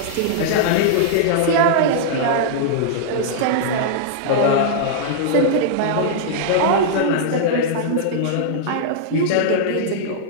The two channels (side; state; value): both; different; correlation -0.02